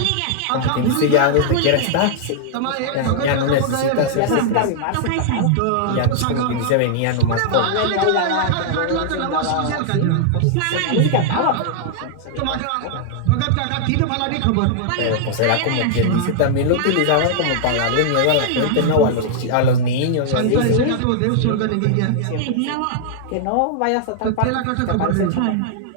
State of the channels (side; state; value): both; different; correlation -0.01